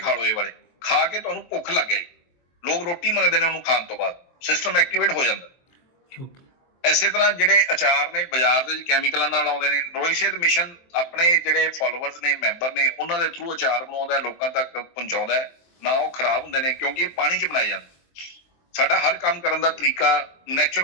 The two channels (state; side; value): late; right; 23 ms